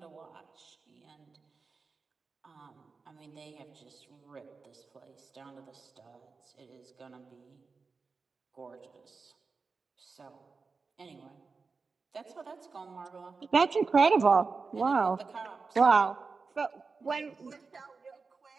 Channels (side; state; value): left; quieter; 4.5 dB